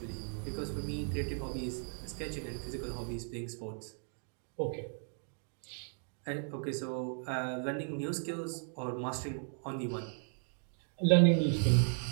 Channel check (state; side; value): silent; left; 54 dB below the other